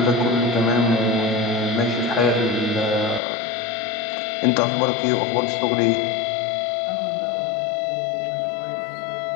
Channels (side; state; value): right; drops out; at 3.2 s